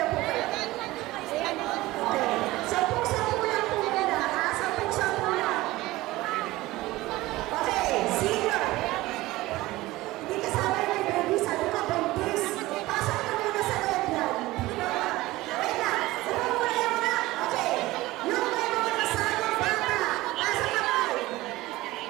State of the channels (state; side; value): quieter; left; 18.6 dB